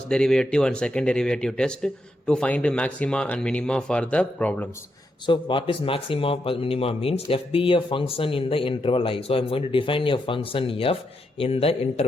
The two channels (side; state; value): both; normal; correlation 0.82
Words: derivative and second derivative test, to find the maxima and minima for the problems. So what is maxima or minima means? F be a function in the interval I. So I am going to define a function f in the